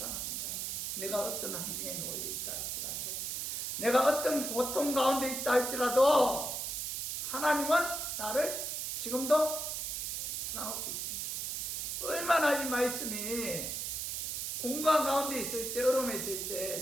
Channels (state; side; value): noise; right; hiss, 3 dB below the sound